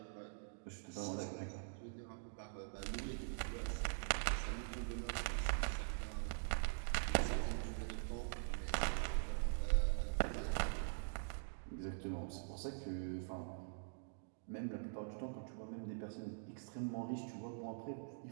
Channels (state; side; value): silent; left; digital silence